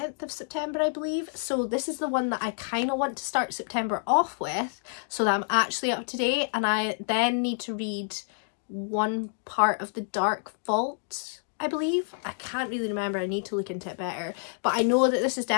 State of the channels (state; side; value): silent; right; digital silence